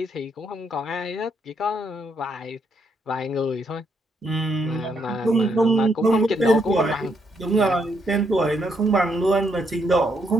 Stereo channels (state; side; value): normal; both; correlation 0.75